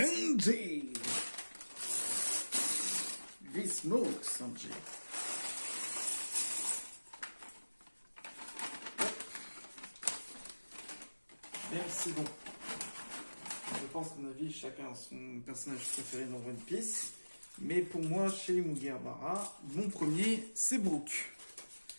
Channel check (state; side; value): inverted; both; correlation -1.00